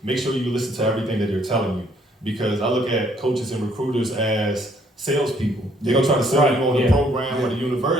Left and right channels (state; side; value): normal; both; correlation 0.65